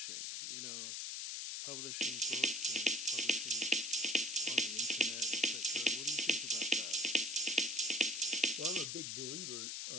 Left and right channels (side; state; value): left; noise; hiss, 4 dB below the sound